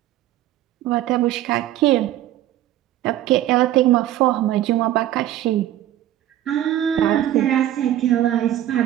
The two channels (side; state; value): left; quieter; 13.0 dB